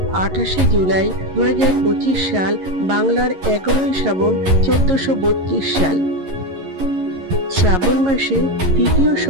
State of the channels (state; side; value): late; left; 11 ms